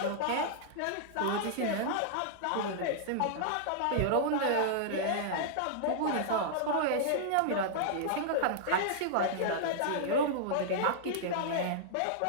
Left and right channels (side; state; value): both; different; correlation -0.01